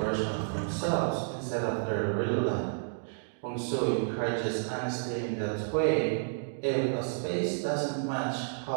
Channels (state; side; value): silent; left; digital silence